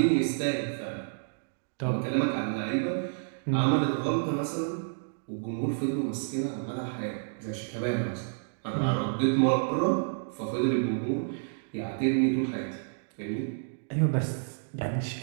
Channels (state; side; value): silent; left; digital silence